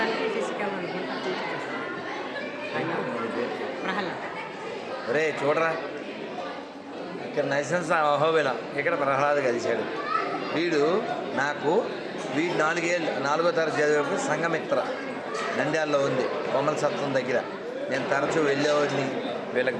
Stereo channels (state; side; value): identical; both; correlation 1.00